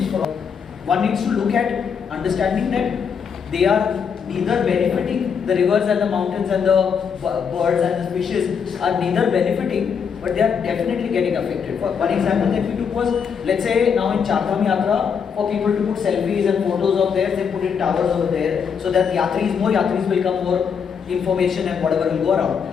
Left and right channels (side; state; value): right; quieter; 6.7 dB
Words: from. One needs to look at understanding that they are neither benefiting, the rivers and the mountains and the birds and the fishes are neither benefiting, but they are definitely getting affected. For one example that we took was, let's say now in Chardham Yatra, for people to put selfies and photos of theirs, they put in towers over there, so that more yatris will come, more information and whatever will go around.